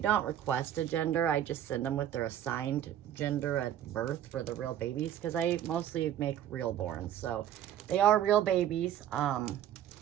request a gender, I just send them with their assigned gender at birth for the real babies, because I mostly make real born, so they are real babies.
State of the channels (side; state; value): left; quieter; 11.1 dB